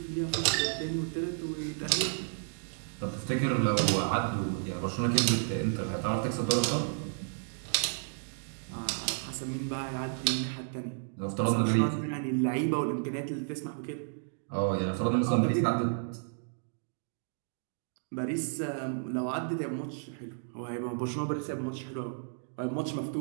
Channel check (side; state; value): left; silent; digital silence